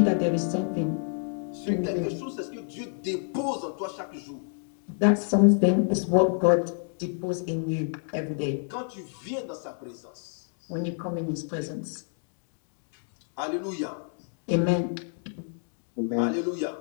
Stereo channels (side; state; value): right; silent; 59 dB below the other